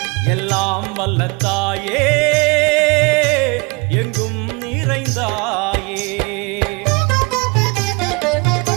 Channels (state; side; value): quieter; left; 29.1 dB